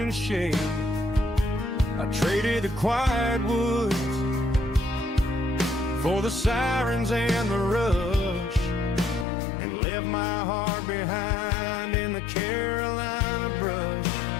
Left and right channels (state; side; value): drops out; right; at 9.2 s